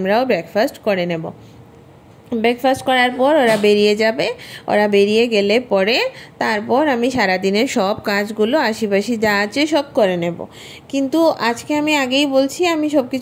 ব্রেকফাস্ট করে নেব। ব্রেকফাস্ট করার পর ওরা বেরিয়ে যাবে। ওরা বেরিয়ে গেলে পরে তারপর আমি সারাদিনের সব কাজগুলো আশিপাশি যা আছে সব করে নেব। কিন্তু আজকে আমি আগেই বলছি, আমি সব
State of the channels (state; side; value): identical; both; correlation 1.00